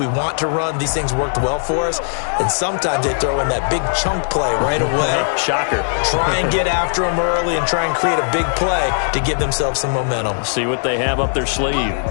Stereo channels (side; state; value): right; silent; digital silence